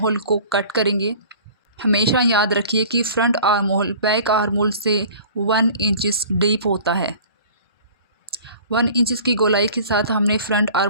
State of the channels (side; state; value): both; inverted; correlation -0.45